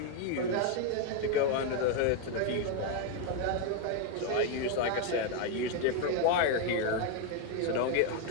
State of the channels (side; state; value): both; different; correlation 0.01